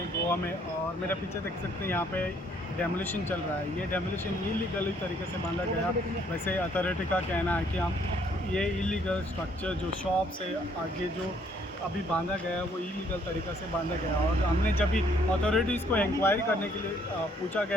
गोवा में, और मेरा पीछे देख सकते हैं यहाँ पे डेमोलिशन चल रहा है। ये डेमोलिशन इलीगल तरीके से बांधा गया। वैसे अथॉरिटी का कहना है कि हम ये इलीगल स्ट्रक्चर जो शॉप से आगे जो अभी बांधा गया है वो इलीगल तरीक़े से बांधा गया। और हमने जब भी अथॉरिटीज़ को इंक्वायरी करने के लिए पूछा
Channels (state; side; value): normal; both; correlation 0.65